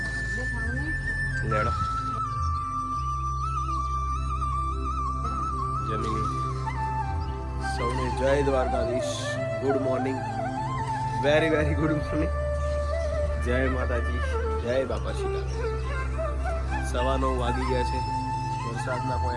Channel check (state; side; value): identical; both; correlation 1.00